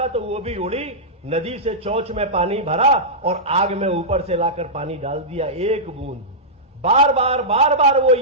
तो वो भी उड़ी, नदी से चोंच में पानी भरा और आग में ऊपर से लाकर पानी डाल दिया, एक बूंद। बार बार वो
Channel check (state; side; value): normal; both; correlation -0.12